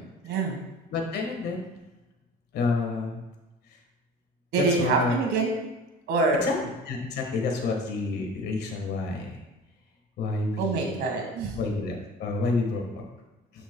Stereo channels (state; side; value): normal; both; correlation 0.39